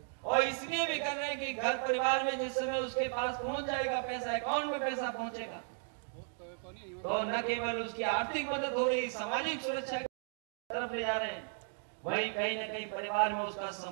और इसलिए भी कर रहे हैं कि घर परिवार में जिस समय उसके पास पहुंच जाएगा पैसा, अकाउंट में पैसा पहुंचेगा, तो न केवल उसकी आर्थिक मदद हो रही, सामाजिक सुरक्षा की तरफ ले जा रहे हैं, वही कहीं न कहीं परिवार में उसका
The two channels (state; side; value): silent; left; 54 dB below the other